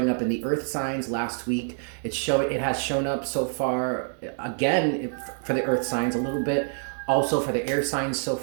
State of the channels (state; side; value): silent; left; 61 dB below the other